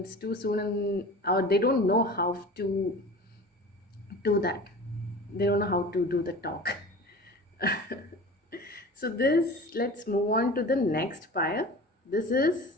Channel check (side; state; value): both; normal; correlation 0.37